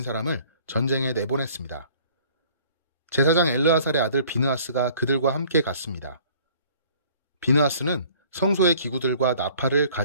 사람을 전쟁에 내보냈습니다. 제사장 엘르아살의 아들 비느하스가 그들과 함께 갔습니다. 비느하스는 성소의 기구들과 나팔을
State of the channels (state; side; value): inverted; both; correlation -0.53